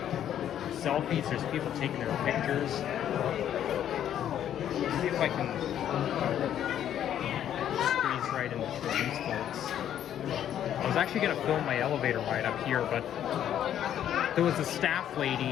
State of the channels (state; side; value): quieter; right; 10.4 dB